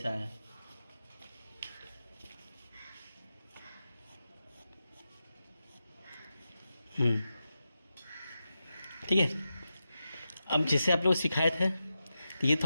आया। ठीक है, अब जैसे आप लोग सिखाए थे तो ये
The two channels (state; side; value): inverted; both; correlation -0.90